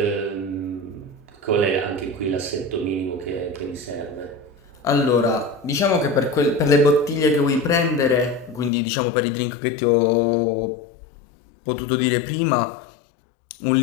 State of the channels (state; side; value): drops out; right; at 8.7 s